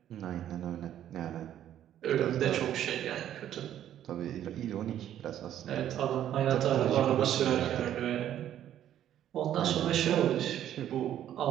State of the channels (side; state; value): left; quieter; 11.2 dB